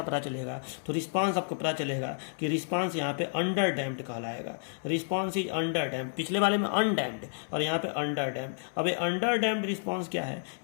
पता चलेगा, तो रिस्पांस आपको पता चलेगा कि रिस्पांस यहाँ पे अंडर डैम्प्ड कहलाएगा। रिस्पांस इज अंडर डैम्प्ड, पिछले वाले में अनडैम्प्ड और यहाँ पे अंडर डैम्प्ड। अब ये अंडर डैम्प्ड रिस्पांस क्या है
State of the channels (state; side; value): silent; right; 57 dB below the other